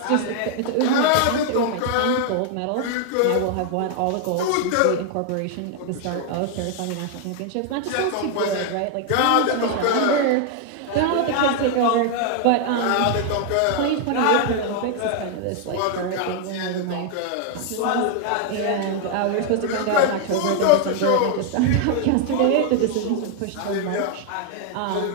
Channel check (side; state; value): both; different; correlation 0.00